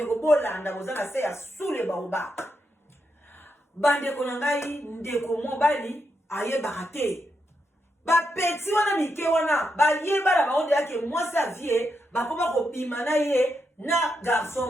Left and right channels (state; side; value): normal; both; correlation 0.83